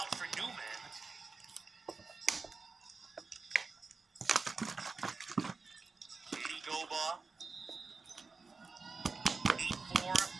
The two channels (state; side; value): quieter; left; 4.4 dB